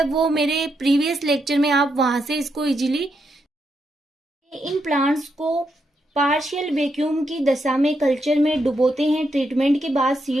वो मेरे प्रीवियस लेक्चर में आप वहां से इसको इजीली। इन प्लांट्स को पार्शियल वैक्यूम की दशा में कल्चर में डुबोते हैं। ट्रीटमेंट के बाद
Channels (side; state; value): both; normal; correlation 0.81